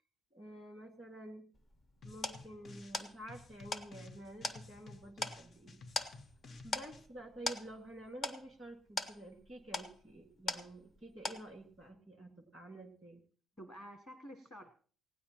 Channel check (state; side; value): normal; both; correlation 0.77